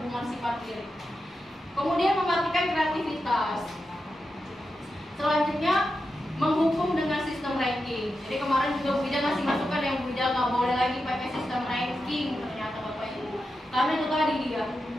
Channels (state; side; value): normal; both; correlation 0.89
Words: sifat diri. Kemudian mematikan kreativitas. Selanjutnya menghukum dengan sistem ranking. Jadi kemarin juga Bu Ida ngasih masukan yang Bu Ida nggak boleh lagi pakai sistem ranking ternyata Bapak Ibu. Karena itu tadi dia